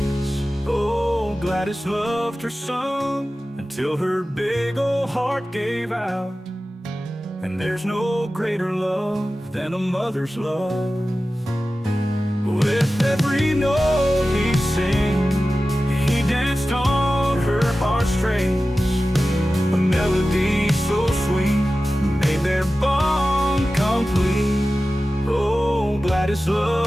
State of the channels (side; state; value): both; normal; correlation 0.95